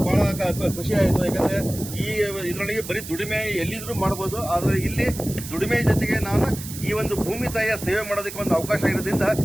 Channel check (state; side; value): noise; right; hiss, 11 dB below the sound